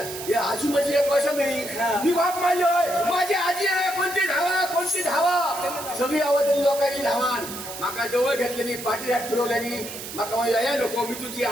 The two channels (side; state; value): right; noise; hiss, 10 dB below the sound